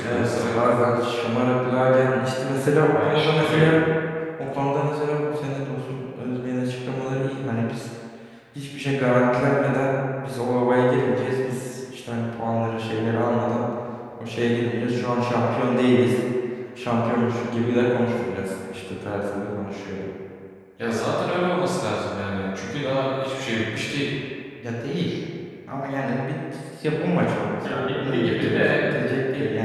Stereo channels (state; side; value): identical; both; correlation 1.00